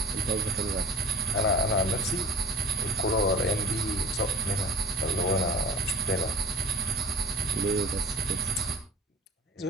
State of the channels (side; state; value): both; normal; correlation 0.42